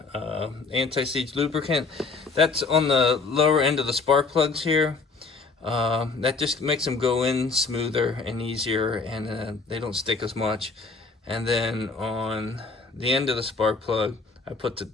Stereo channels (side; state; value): right; quieter; 4.3 dB